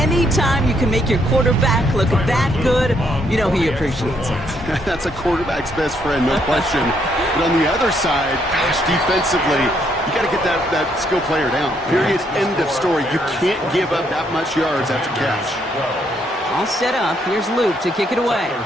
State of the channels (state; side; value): normal; both; correlation 0.72